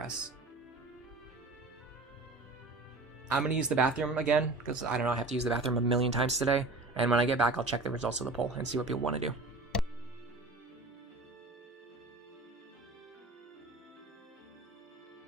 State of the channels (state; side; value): quieter; left; 3.3 dB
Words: I'm going to use the bathroom again, because I don't know, I have to use the bathroom a million times today. And when I get back, I'll check the results of the poll and see what people want to do.